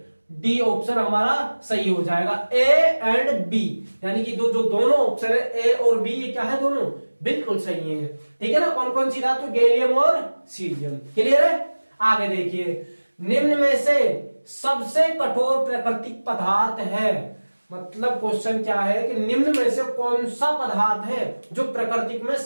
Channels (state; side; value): inverted; both; correlation -1.00